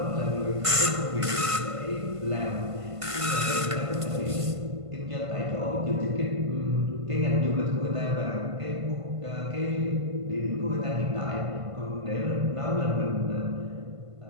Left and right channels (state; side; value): late; left; 1.5 ms